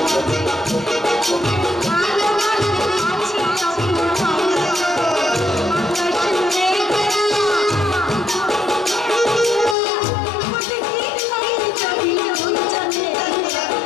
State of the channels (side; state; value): right; drops out; at 9.8 s